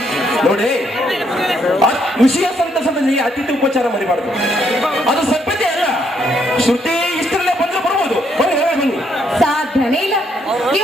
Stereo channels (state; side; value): normal; both; correlation 0.72